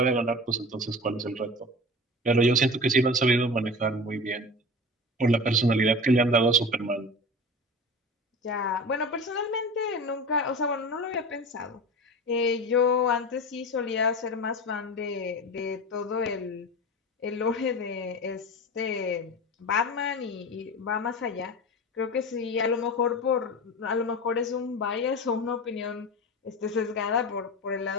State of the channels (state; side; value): normal; both; correlation 0.31